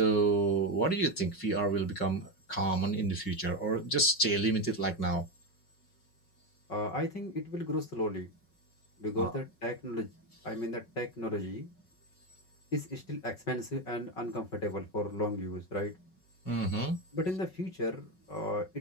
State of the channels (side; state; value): right; late; 5.4 ms